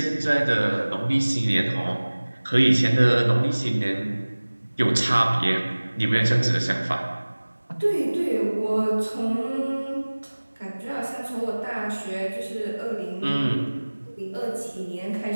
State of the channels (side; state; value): both; inverted; correlation -1.00